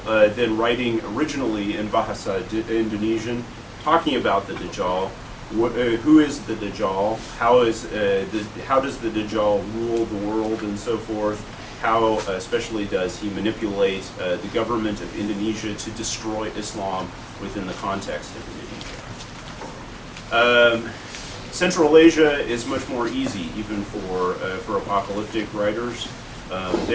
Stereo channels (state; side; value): identical; both; correlation 1.00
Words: then writing originally in Bahasa Indonesian, talking about the Dajjal. Who is the Dajjal? How does the Dajjal rule the world and so forth? How especially does he manipulate the government of Indonesia to destroy Islam within the context of Indonesia? Central Asia is much more easy, even for apocalyptic writers.